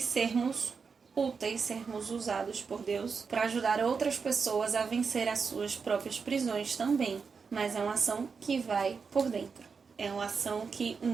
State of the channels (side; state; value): left; quieter; 5.4 dB